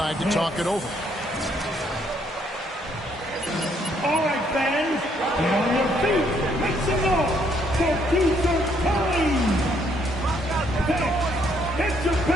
to talk it over. All right, fans, get on your feet. Make some noise for future time. Hey, it's your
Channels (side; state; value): both; normal; correlation 0.69